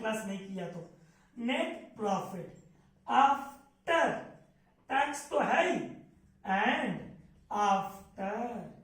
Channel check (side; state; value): both; identical; correlation 1.00